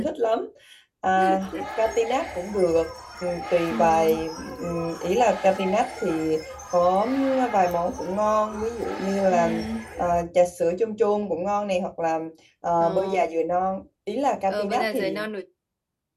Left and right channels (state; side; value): identical; both; correlation 1.00